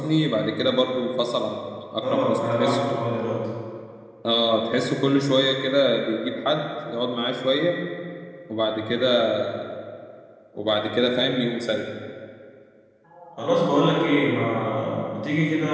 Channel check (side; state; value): both; identical; correlation 1.00